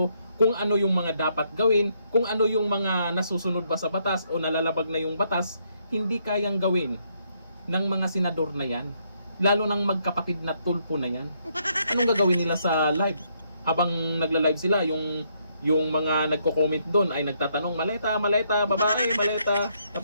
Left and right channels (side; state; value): both; inverted; correlation -0.73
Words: kung ano yung mga dapat gawin, kung ano yung mga nasusunod ba sa batas o nalalabag na yung batas, hindi kayang gawin ng mga senador na yan. Lalo ng magkapatid na Tulfo na yan. Anong gagawin nila sa live? Habang nagla-live sila, yung mga nagko-comment doon ay nagtatanong, maleta, babae, maleta.